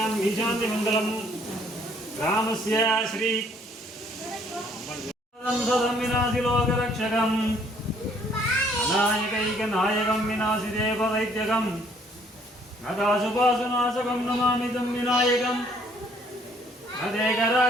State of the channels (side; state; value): both; normal; correlation 0.63